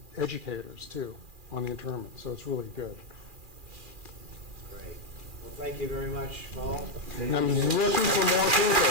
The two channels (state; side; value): late; left; 2.4 ms